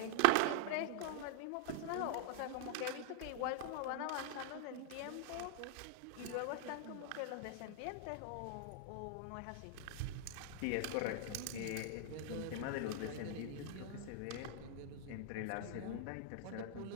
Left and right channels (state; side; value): different; both; correlation 0.00